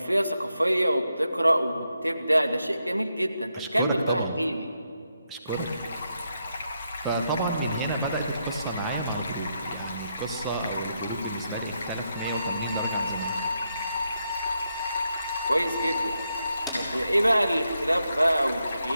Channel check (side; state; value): both; inverted; correlation -0.82